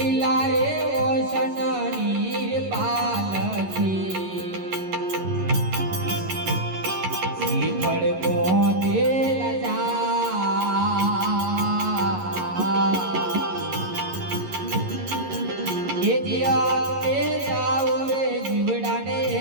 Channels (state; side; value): late; left; 11 ms